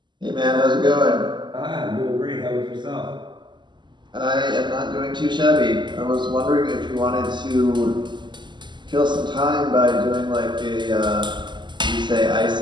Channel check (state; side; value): late; left; 0.22 ms